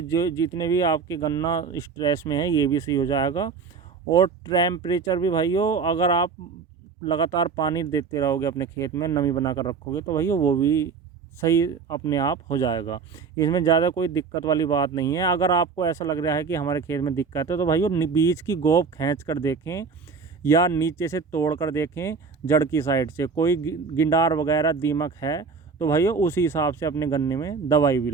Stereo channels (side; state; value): left; quieter; 5.3 dB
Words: जो जितने भी आपके गन्ना स्ट्रेस में है ये भी सही हो जाएगा। और टेम्परेचर भी भाइयों, अगर आप लगातार पानी देते रहोगे अपने खेत में, नमी बनाकर रखोगे, तो भाइयों वो भी सही अपने आप हो जाएगा। इसमें ज़्यादा कोई दिक्कत वाली बात नहीं है। अगर आपको ऐसा लग रहा है कि हमारे खेत में दिक्कत है, तो भाइयों बीज की गोब खींच कर देखें या नीचे से तोड़ कर देखें, जड़ की साइड से कोई गिंडार वगैरह दीमक है तो भाइयों उसी हिसाब से अपने गन्ने में दवाई भी